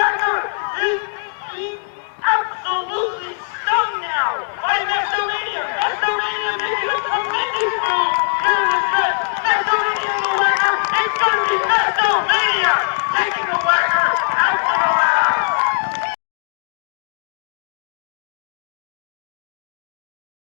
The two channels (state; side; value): silent; right; digital silence